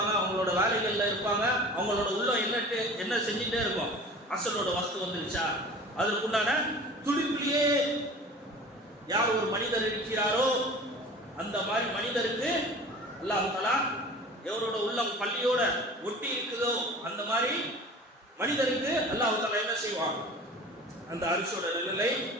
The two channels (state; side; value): normal; both; correlation 0.41